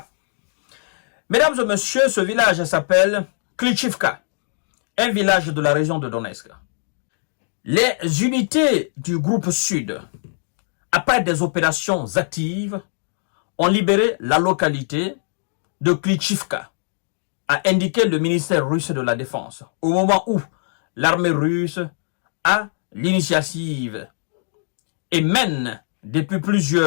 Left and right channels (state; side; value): silent; right; digital silence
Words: Mesdames et messieurs, ce village s'appelle Klitschivka, un village de la région de Donetsk. Les unités du groupe Sud, après des opérations actives, ont libéré la localité de Klitschivka, a indiqué le ministère russe de la Défense, au moment où l'armée russe a l'initiative et mène depuis